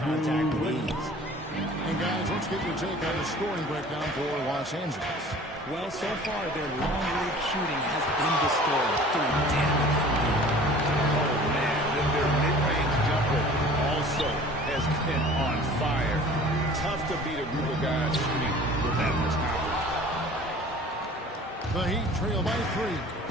with ease. And guys, let's get your take on the scoring breakdown for Los Angeles. Well, so far, their long-range shooting has been the story. Doing damage from here. Oh, man, their mid-range jumper also has been on fire. Tough to beat a group of guys shooting with that much confidence. The Heat trail by 3.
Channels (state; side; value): normal; both; correlation 0.46